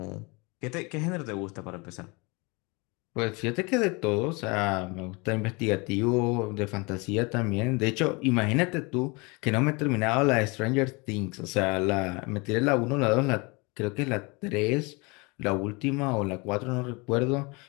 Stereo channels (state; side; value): quieter; right; 28.1 dB